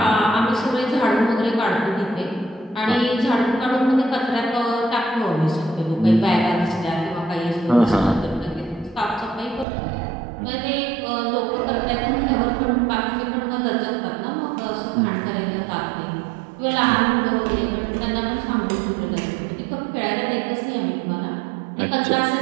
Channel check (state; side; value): drops out; left; at 9.7 s